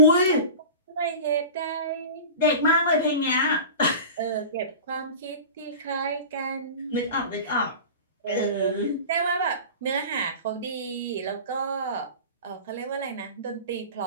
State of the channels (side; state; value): both; inverted; correlation -0.34